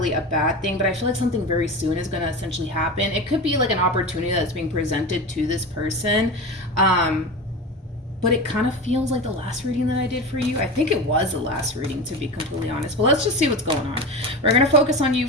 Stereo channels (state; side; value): normal; both; correlation 0.26